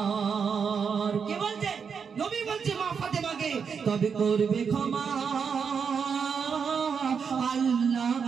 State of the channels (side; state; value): left; quieter; 6.3 dB